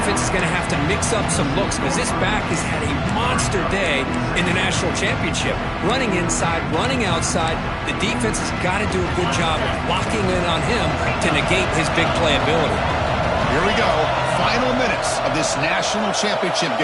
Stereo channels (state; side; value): identical; both; correlation 1.00